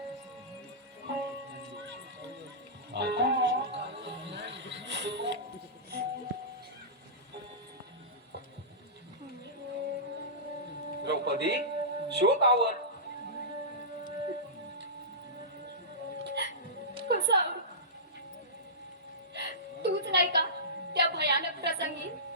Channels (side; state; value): both; normal; correlation -0.20